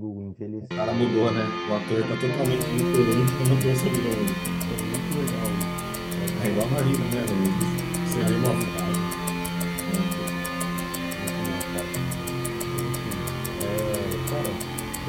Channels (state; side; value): identical; both; correlation 1.00